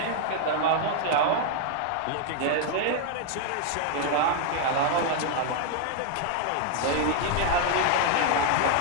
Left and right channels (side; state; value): both; different; correlation 0.00